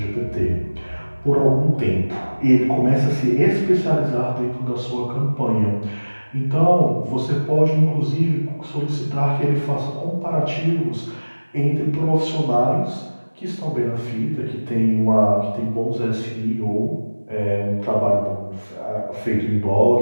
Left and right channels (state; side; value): inverted; both; correlation -1.00